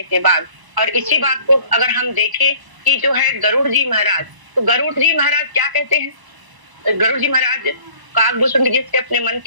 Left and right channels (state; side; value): late; left; 1.0 ms